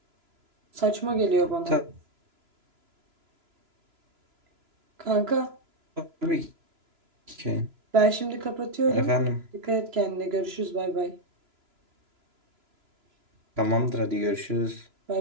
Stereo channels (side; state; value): left; late; 3.0 ms